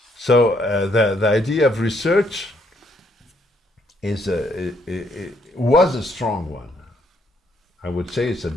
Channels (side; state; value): both; normal; correlation 0.71